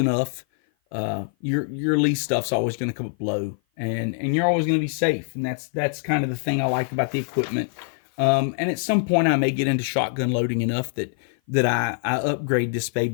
your Lee stuff's always going to come up low, and you're always going to be safe. And that's kind of the thing I like about the equipment. And at some point I may get into shotgun loading enough that I upgrade this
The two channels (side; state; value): right; silent; 55 dB below the other